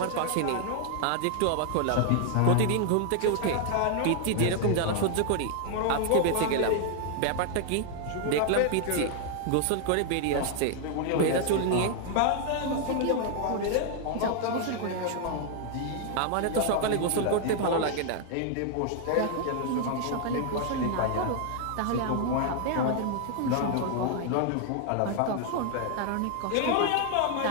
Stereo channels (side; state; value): both; different; correlation 0.00